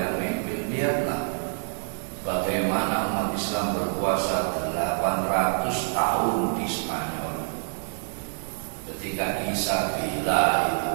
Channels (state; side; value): silent; left; digital silence